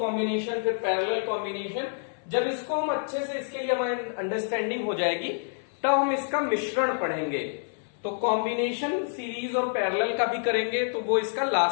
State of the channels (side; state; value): right; silent; 59 dB below the other